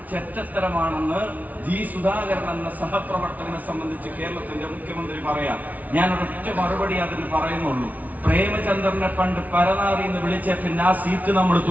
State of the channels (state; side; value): late; left; 0.074 ms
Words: ചെറ്റത്തരമാണെന്ന് സുധാകരൻ എന്ന സഹപ്രവർത്തകനെ സംബന്ധിച്ച് കേരളത്തിന്റെ മുഖ്യമന്ത്രി പറയാം. ഞാൻ ഒരൊറ്റ മറുപടി അതിന് പറയുന്നുള്ളൂ. പ്രേമചന്ദ്രനെ പണ്ട് പരനാറി എന്ന് വിളിച്ച പിന്നെ ആ സീറ്റ് നമ്മൾ